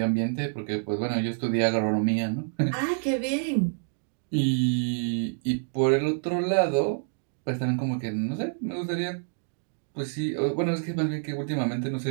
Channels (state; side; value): silent; left; digital silence